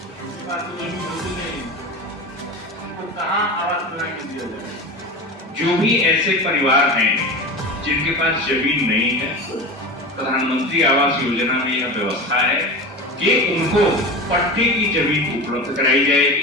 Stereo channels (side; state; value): both; normal; correlation 0.28